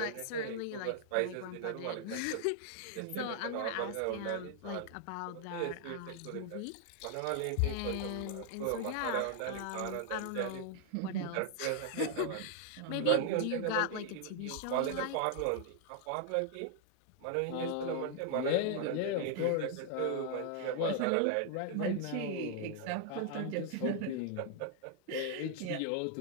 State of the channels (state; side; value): different; both; correlation 0.00